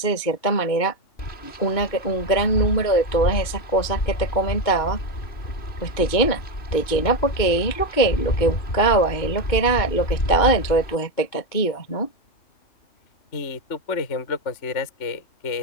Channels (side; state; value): right; late; 2.2 ms